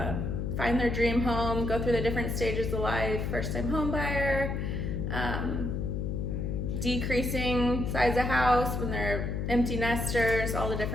find their dream home, go through the different stages of life, first-time home buyer, decreasing size of house when they're empty nesters, all the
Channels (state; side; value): noise; left; hum, 1 dB below the sound